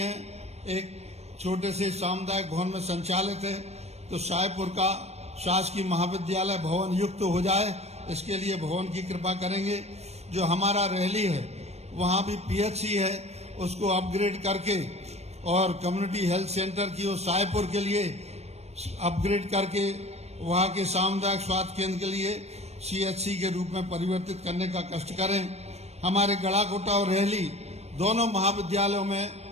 एक छोटे से सामुदायिक भवन में संचालित है। तो शाहपुर का शासकीय महाविद्यालय भवन युक्त हो जाए, इसके लिए भवन की कृपा करेंगे। जो हमारा रहली है वहाँ भी पीएचसी है, उसको अपग्रेड करके और कम्युनिटी हेल्थ सेंटर की वो शाहपुर के लिए अपग्रेड करके वहाँ के सामुदायिक स्वास्थ्य केंद्र के लिए सीएचसी के रूप में परिवर्तित करने का कष्ट करें। हमारे गड़ाकोटा और रहली दोनों महाविद्यालयों में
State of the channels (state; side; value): late; left; 0.31 ms